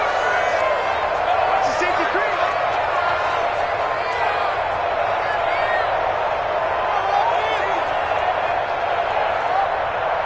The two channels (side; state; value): both; identical; correlation 1.00